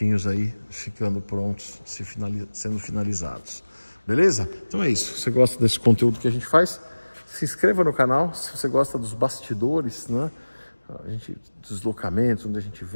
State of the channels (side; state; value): both; inverted; correlation -1.00